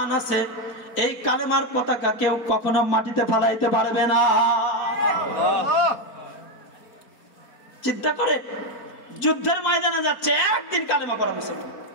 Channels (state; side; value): late; right; 4.6 ms